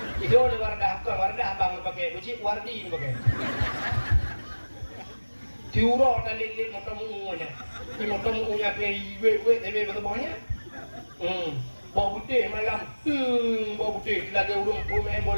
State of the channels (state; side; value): inverted; both; correlation -1.00